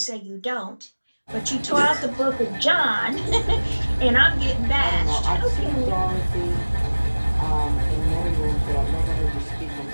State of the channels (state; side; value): inverted; both; correlation -1.00